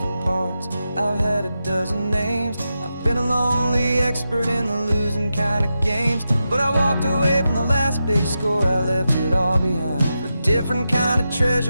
parts, I've had a dozen names. I've been a lonely expert in the losing kind of games, but I walked away from the last big score. I left it all behind for a different kind of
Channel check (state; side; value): inverted; both; correlation -0.89